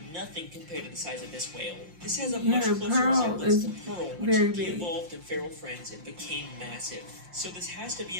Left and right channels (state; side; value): late; left; 5.7 ms